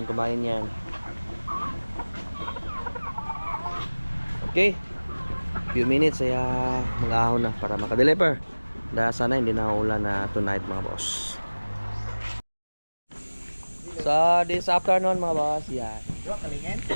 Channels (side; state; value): both; inverted; correlation -1.00